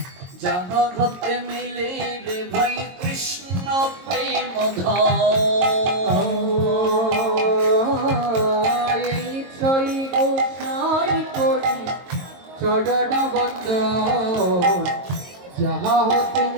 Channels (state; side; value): late; left; 22 ms